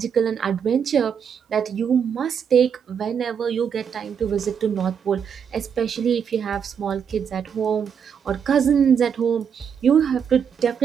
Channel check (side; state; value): left; quieter; 7.3 dB